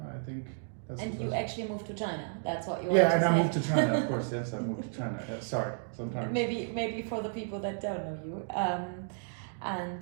I think that's. And you actually moved to China. That's what you. Yeah, want and to I say. moved to China. Of course, yes, I moved to China. Sorry, sometimes. Maybe for the people that don't know you.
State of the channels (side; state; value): left; silent; digital silence